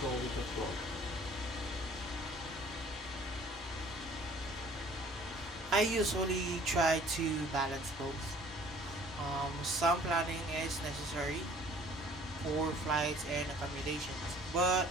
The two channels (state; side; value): normal; both; correlation 0.53